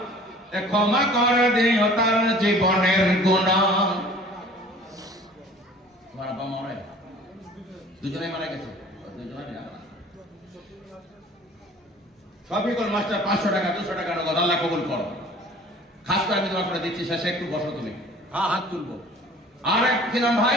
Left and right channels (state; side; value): normal; both; correlation 0.48